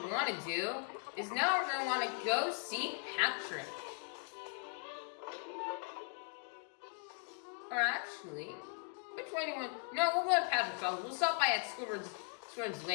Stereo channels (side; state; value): right; quieter; 39.3 dB